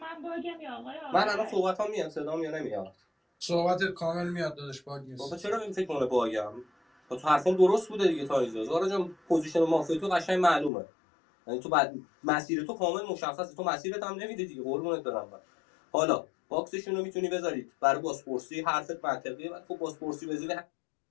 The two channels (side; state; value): right; drops out; at 10.7 s